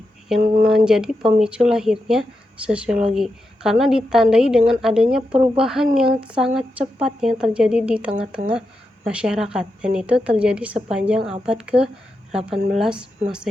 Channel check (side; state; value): both; normal; correlation 0.87